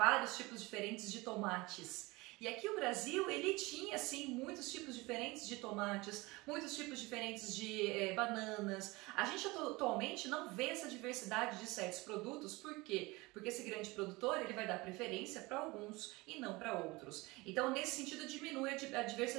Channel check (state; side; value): quieter; left; 22.8 dB